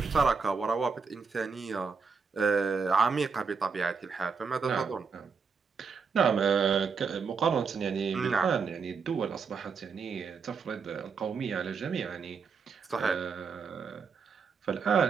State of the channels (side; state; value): left; quieter; 5.4 dB